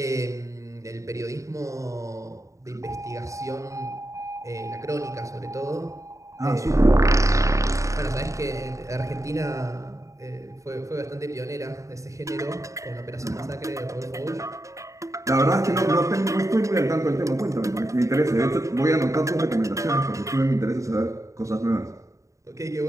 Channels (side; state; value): left; late; 0.15 ms